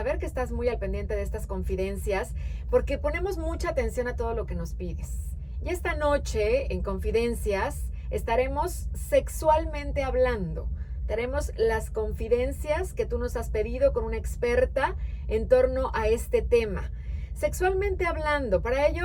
que estás muy al pendiente de estas confidencias, porque ponemos mucha atención a todo lo que nos pides. Y esta noche, en Confidencias, estaremos sexualmente hablando. Tenemos las confidencias que tú nos has pedido con una experta en torno a este tema. Sexualmente hablando, para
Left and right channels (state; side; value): identical; both; correlation 1.00